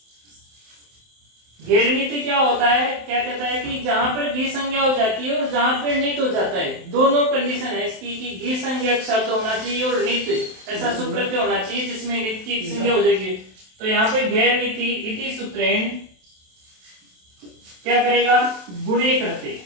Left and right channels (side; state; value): left; late; 27 ms